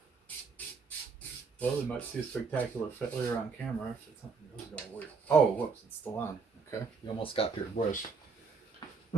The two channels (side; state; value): left; quieter; 4.9 dB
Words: Well, we might see a spectacular failure on camera if it's something that was going to work. Oh, whoops, it's still on. Okay. You almost got your bush.